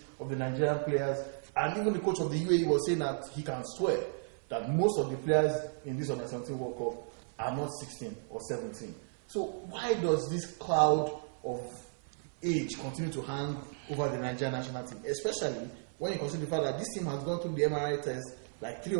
of the Nigerian players. And even the coach of the UAE was saying that he can swear that most of the players in this under 17 World Cup are not 16 or 17. So why does this cloud of age continue to hang over the Nigerian national team, especially when you consider the fact that this team has gone through the MRI test like 3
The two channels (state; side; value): silent; left; 55 dB below the other